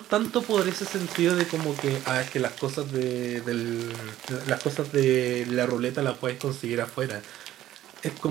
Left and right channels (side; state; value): left; quieter; 13.4 dB